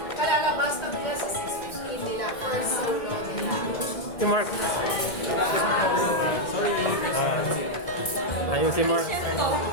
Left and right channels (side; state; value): right; late; 1.8 ms